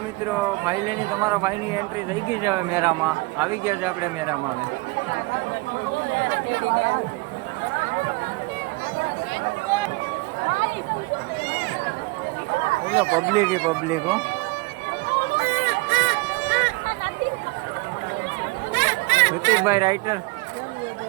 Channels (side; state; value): left; quieter; 25.1 dB